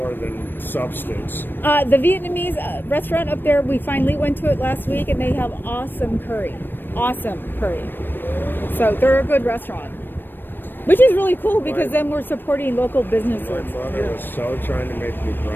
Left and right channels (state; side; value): late; right; 0.095 ms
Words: than substance. The Vietnamese restaurant up there, we finally went to it last week, and they have awesome curry. Awesome curry. So they're a good restaurant. Which is really cool, because then we're supporting local businesses. My mother was so trying to make me